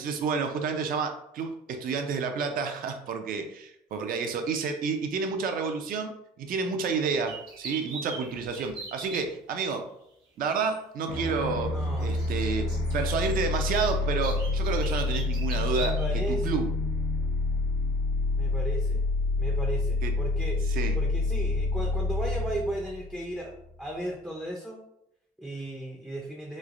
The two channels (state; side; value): normal; both; correlation 0.44